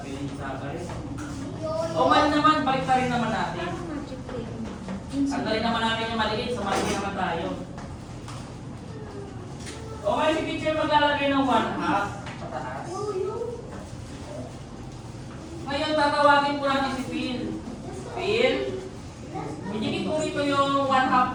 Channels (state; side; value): identical; both; correlation 1.00